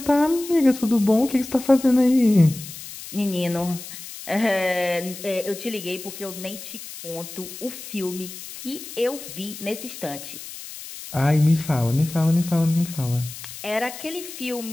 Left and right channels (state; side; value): noise; left; hiss, 12 dB below the sound